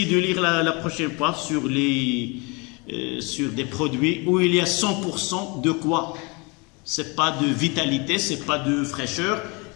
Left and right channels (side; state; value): right; quieter; 29.0 dB